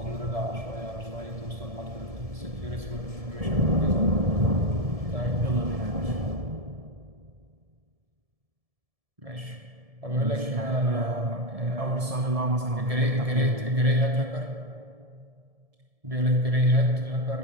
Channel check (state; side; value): late; left; 1.7 ms